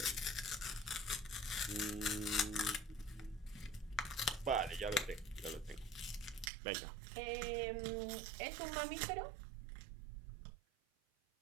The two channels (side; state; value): left; drops out; at 6.5 s